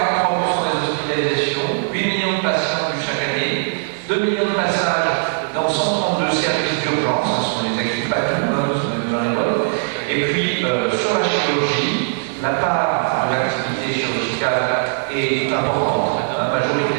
des hospitalisations, 8 millions de patients chaque année, 2 millions de passages dans 132 services d'urgence, ce sont les actifs pas tout, dans les vols. Et puis, sur la chirurgie, la part de l'activité chirurgicale est importante,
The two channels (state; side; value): silent; left; digital silence